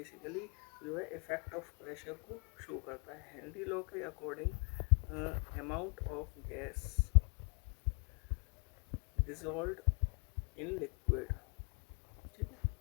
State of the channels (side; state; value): right; quieter; 38.1 dB